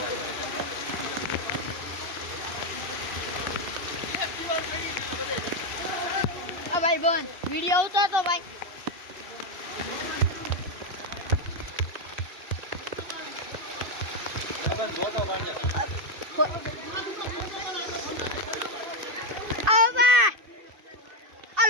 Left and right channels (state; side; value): late; left; 2.6 ms